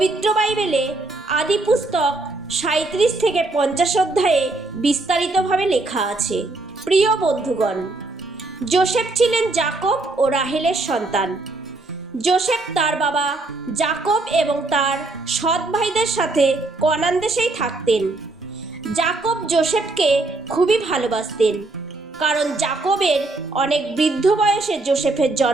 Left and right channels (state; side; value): quieter; left; 3.1 dB